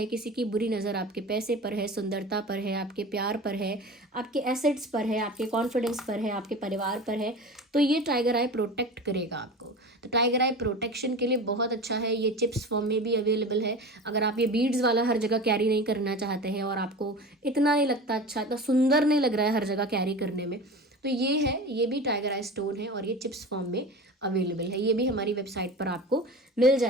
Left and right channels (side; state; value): both; normal; correlation 0.33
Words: किसी की बुरी नज़र आपके पैसे पर है, सुंदरता पर है, आपके प्यार पर है, आपके एसेट्स पर है, आपके कॉन्फिडेंस पर है, आपके परिवार पर है, तो ये टाइगर आई प्रोटेक्ट करेगा आपको। तो टाइगर आई प्रोटेक्शन के लिए बहुत अच्छा है। ये चिप्स फॉर्म में भी अवेलेबल है। अगर आप ये बीड्स वाला हर जगह कैरी नहीं करना चाहते हैं और आपको इतना नहीं लगता अच्छा, इतना सुंदर नहीं लग रहा है हर जगह कैरी करने में, तो ये है, ये भी टाइगर आई स्टोन है और ये चिप्स फॉर्म में अवेलेबल है। ये भी हमारी वेबसाइट पर आपको मिल